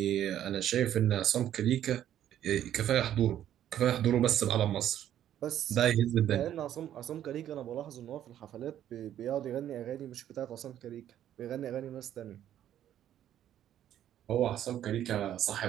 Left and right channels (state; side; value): quieter; left; 11.2 dB